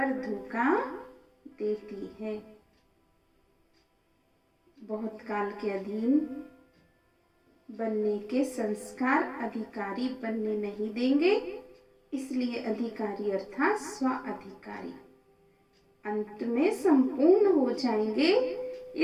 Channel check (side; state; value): both; identical; correlation 1.00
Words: धोखा देती है। बहुत काल के अधीन बनने के संस्कार अधिकारी बनने नहीं देंगे, इसलिए अधिकारी अर्थात स्व अधिकारी अंत में संपूर्ण हो जाएंगे।